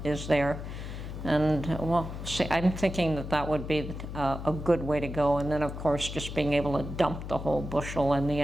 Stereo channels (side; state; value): left; noise; hum, 8 dB below the sound